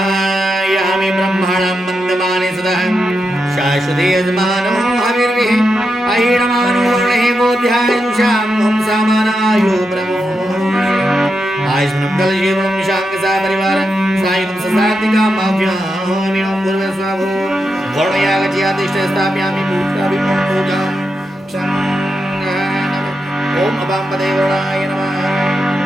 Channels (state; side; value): normal; both; correlation 0.86